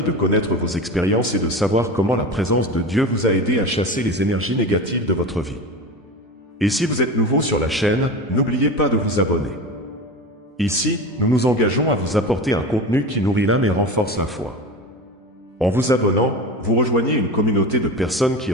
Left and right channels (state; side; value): normal; both; correlation 0.28